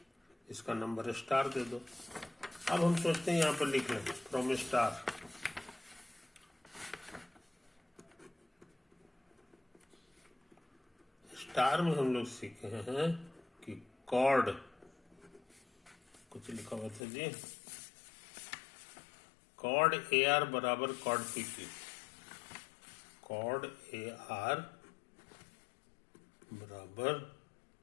इसका नंबर स्टार दे दो। अब हम सोचते हैं यहाँ पर लिख लें फ्रॉम स्टार, स्टार में हम लोग सीखे हैं कि कॉर्ड, कुछ लिखा हुआ था जी, कॉर्ड ए आर बराबर chord P Q, chord A R बराबर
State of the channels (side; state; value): right; drops out; at 17.0 s